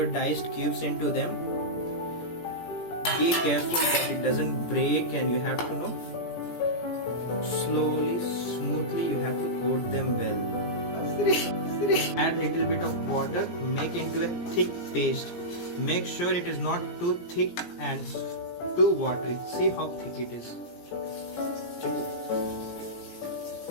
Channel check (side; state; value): right; late; 17 ms